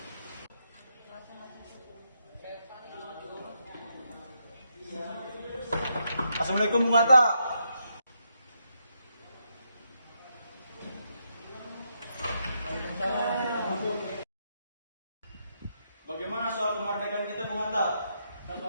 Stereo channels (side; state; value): both; inverted; correlation -0.80